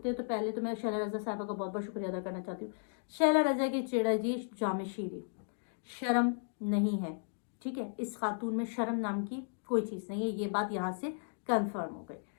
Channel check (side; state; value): right; silent; digital silence